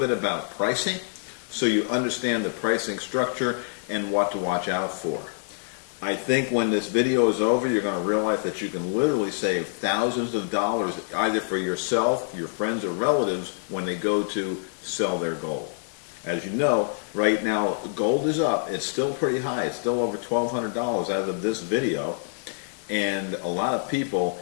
about pricing so you understand the pricing structure and what to watch out for. I think when this video is over, you're going to realize that you can literally save thousands of dollars either for yourself, your friends, or relatives when they go to sell their gold. As you know, right now gold is up. It's still pretty high. It's still over $1,200 as of this video. And a lot of people,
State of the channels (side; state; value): right; silent; digital silence